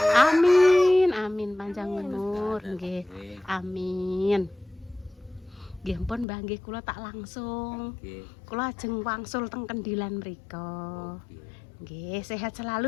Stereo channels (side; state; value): right; drops out; at 6.2 s